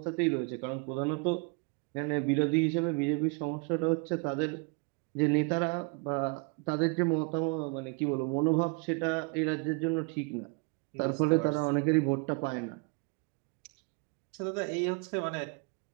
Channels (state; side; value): quieter; left; 30.8 dB